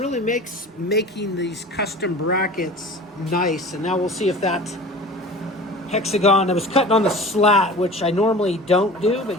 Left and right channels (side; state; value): both; normal; correlation 0.39